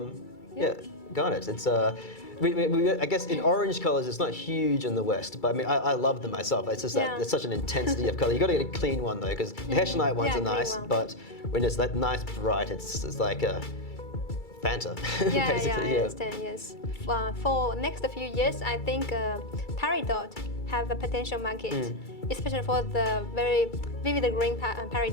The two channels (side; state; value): right; late; 2.3 ms